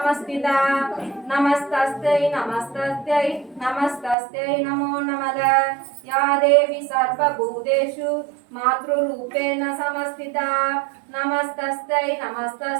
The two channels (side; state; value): left; drops out; at 4.2 s